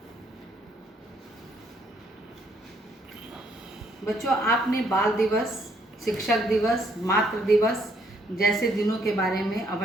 बच्चों, आपने बाल दिवस, शिक्षक दिवस, मातृ दिवस जैसे दिनों के बारे में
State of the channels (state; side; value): normal; both; correlation 0.69